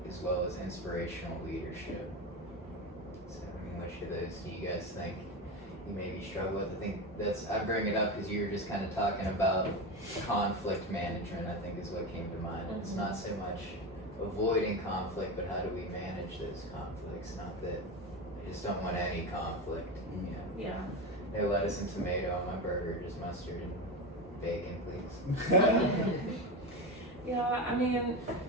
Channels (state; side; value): normal; both; correlation 0.19